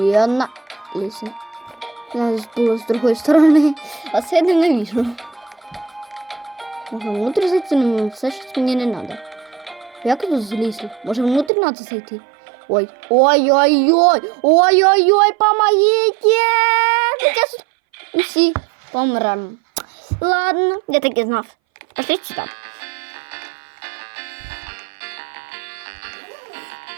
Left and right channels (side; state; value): left; drops out; at 11.5 s